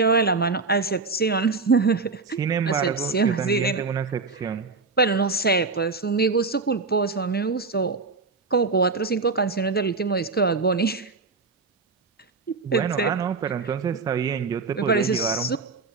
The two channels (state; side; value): quieter; left; 4.2 dB